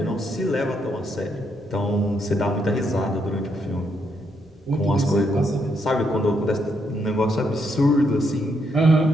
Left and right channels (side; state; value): both; normal; correlation 0.76